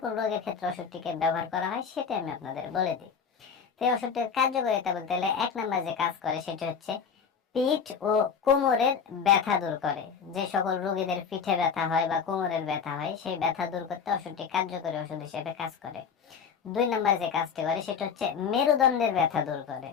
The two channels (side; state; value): right; quieter; 6.5 dB